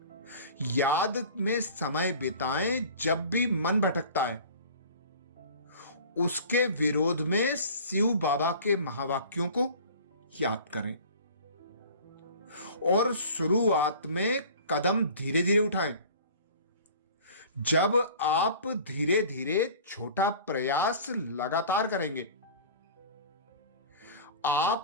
याद में समय बिताएं। जब भी मन भटकता है, उसके विरोध में शिव बाबा के महावाक्यों को याद करें और शुरुआत में कदम धीरे धीरे उठाएं। जब आप धीरे धीरे छोटा प्रयास लगातार करेंगे,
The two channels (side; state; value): both; inverted; correlation -0.42